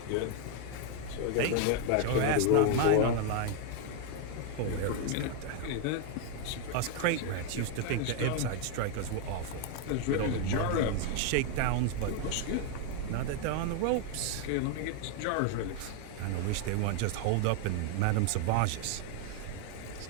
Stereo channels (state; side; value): different; both; correlation 0.00